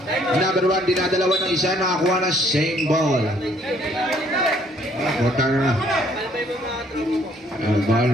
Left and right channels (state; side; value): normal; both; correlation 0.64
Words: Number 1, dinadalawa ng isa. Nakakuha na same ball. Putang na. Ball